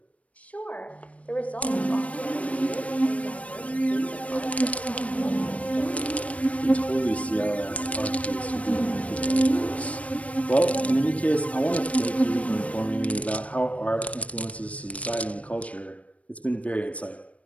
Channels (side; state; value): right; late; 0.065 ms